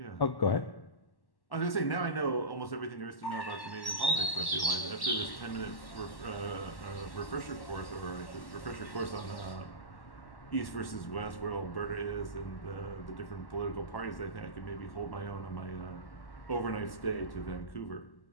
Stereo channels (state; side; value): late; right; 1.1 ms